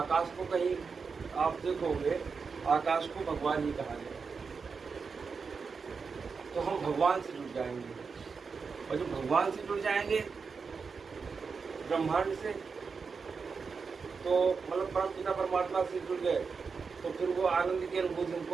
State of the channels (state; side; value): quieter; left; 5.2 dB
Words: को कहीं आप देखोगे, आकाश को भगवान ही कहा गया। तो हम भगवान से जुड़ जाएंगे, और जब भगवान से जुड़ जाएंगे ब्रह्मांड से, तो मतलब परम पिता परमात्मा से जुड़ गए, तो फिर वो आनंद की अनुभूति